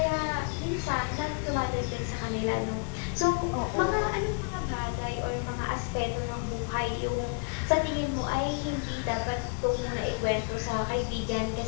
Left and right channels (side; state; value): right; quieter; 36.6 dB